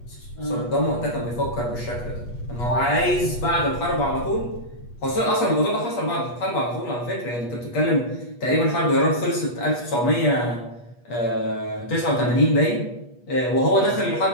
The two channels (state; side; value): late; right; 8.3 ms